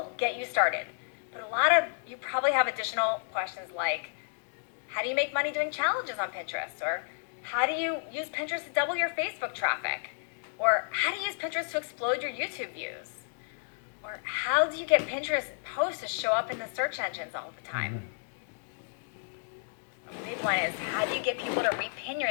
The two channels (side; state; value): right; silent; digital silence